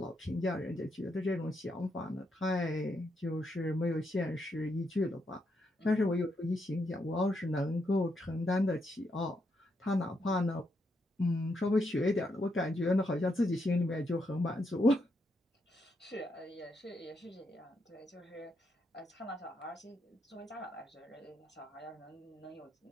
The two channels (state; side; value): normal; both; correlation 0.80